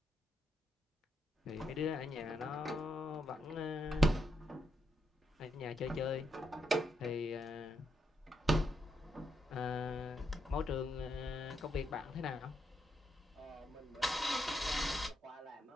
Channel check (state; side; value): normal; both; correlation 0.80